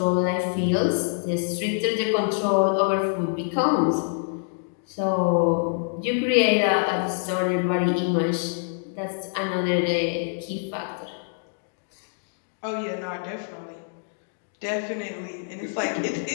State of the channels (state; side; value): silent; right; digital silence